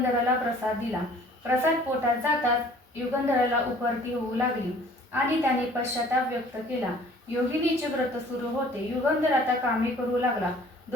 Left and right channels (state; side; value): normal; both; correlation 0.52